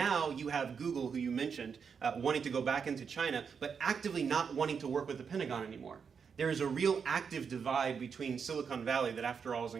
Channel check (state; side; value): quieter; left; 6.3 dB